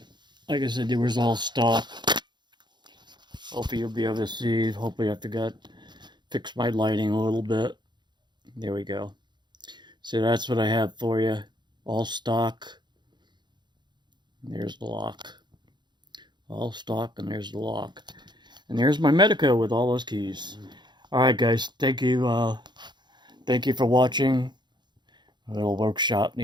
Like I said, there was all stock. Hopefully you'll be able to see. Hopefully I fix my lighting a little bit. There we go. So that's what I have for you. All stock. There's the lock. All stock, and there's the lock. And there's my Medeco with all those keys. Alright guys, thank you. Thank you for watching. A little workshop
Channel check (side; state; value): left; late; 0.21 ms